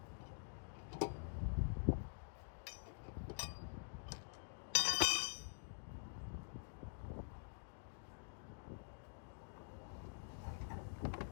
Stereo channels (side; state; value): right; silent; digital silence